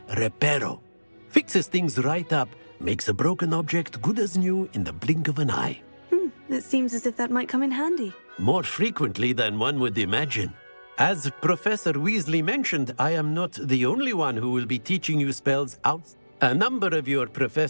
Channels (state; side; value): inverted; both; correlation -1.00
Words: Reparo. Fixes things right up, makes a broken object good as new in the blink of an eye. It seems as if that might come in handy. More frequently than one would imagine. As Professor Weasley mentioned, I am not the only one who will be teaching you spells out. A number of your